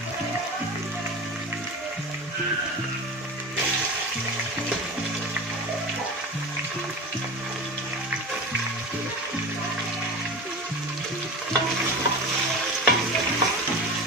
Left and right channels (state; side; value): normal; both; correlation 0.31